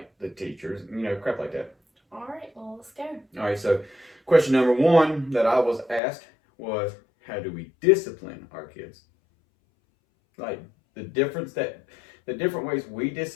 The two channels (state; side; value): drops out; right; at 6.0 s